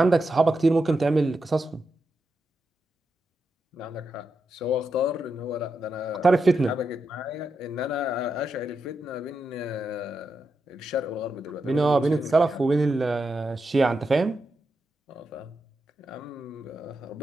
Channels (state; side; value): normal; both; correlation 0.86